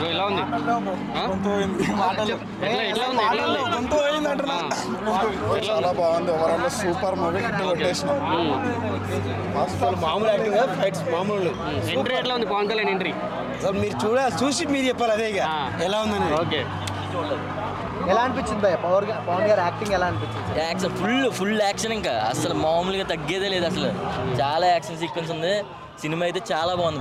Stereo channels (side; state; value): both; identical; correlation 1.00